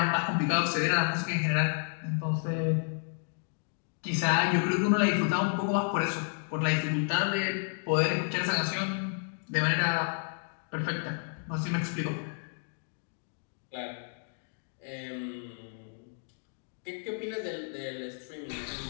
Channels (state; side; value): silent; right; 56 dB below the other